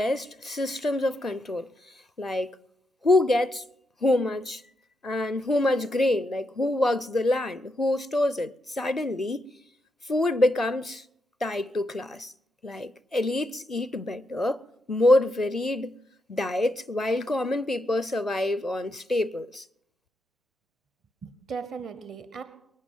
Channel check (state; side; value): normal; both; correlation 0.82